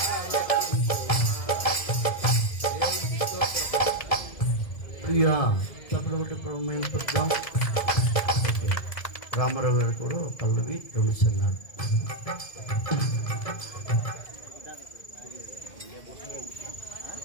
ఆలకించుమా. దేవునికి స్తోత్రం. ప్రియా తప్పుడు ప్రమేయింపడదాం. ఓకే, రామారావు గారు కూడా ఒక పల్లవి రుణిస్తున్నారు.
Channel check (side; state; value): right; late; 1.7 ms